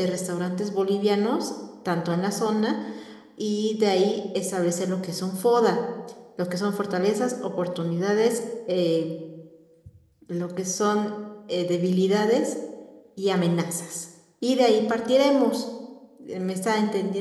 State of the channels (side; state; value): both; identical; correlation 1.00